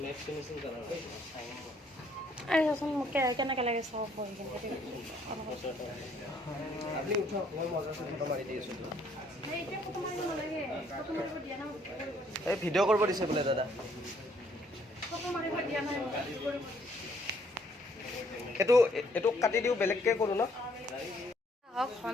আরে চাচোন মোক কেনেকৈ লাগে চাব বহি কিনে আপুনি উঠক, মই মজাটো ফটো মাৰি দি আছোঁ। এই ভিডিঅ' কৰিব দিছে বোলে দাদা। এইটো কাটি দিওঁ, বেলেগকৈ কৰোঁ ন? হওক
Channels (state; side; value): normal; both; correlation 0.65